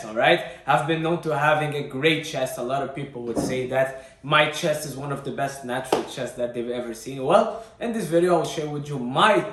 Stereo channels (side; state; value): both; identical; correlation 1.00